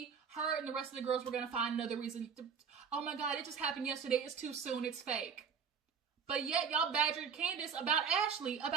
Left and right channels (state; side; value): quieter; left; 6.5 dB